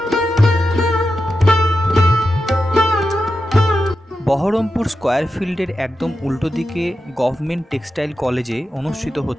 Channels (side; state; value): both; normal; correlation 0.90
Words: বহরমপুর স্কয়ার ফিল্ডের একদম উল্টো দিকে গভর্নমেন্ট টেক্সটাইল কলেজে অনুষ্ঠিত